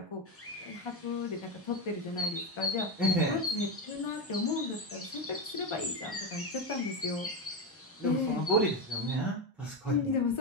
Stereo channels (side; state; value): both; normal; correlation 0.13